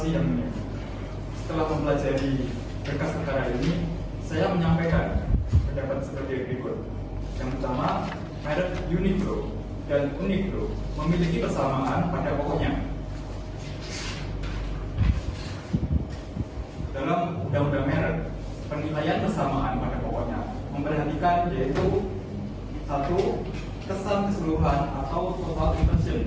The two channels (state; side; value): identical; both; correlation 1.00